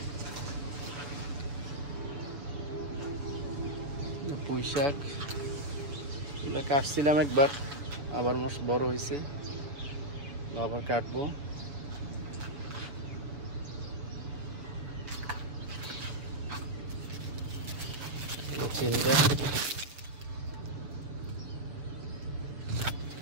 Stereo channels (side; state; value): left; late; 7.0 ms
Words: পুঁই শাক এগুলো কাটছিলাম একবার, আবার বড় হয়েছে, আবার কাটবো। চিন্তা